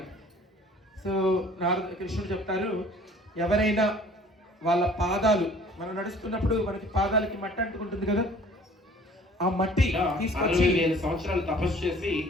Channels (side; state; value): both; normal; correlation 0.52